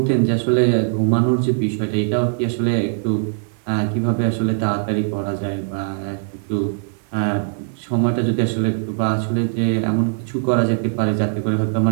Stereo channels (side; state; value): left; silent; 59 dB below the other